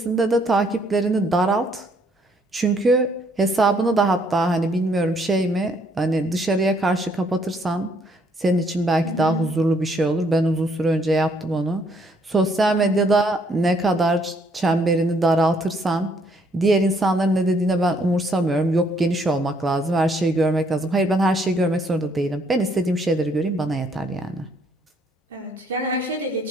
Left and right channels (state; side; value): normal; both; correlation 0.68